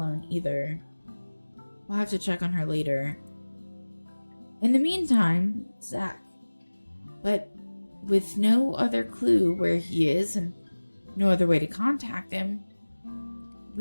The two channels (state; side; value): inverted; both; correlation -1.00